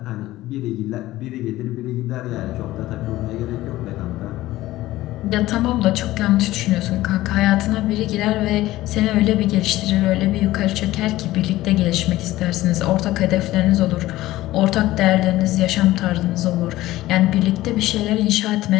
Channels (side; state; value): right; quieter; 16.5 dB